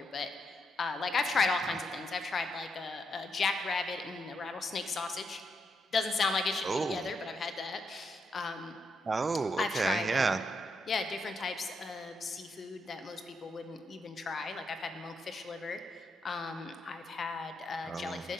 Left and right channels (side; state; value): both; normal; correlation 0.81